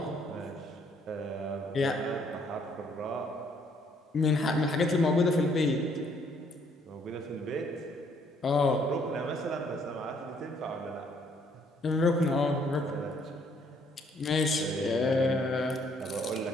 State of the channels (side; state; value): both; normal; correlation 0.66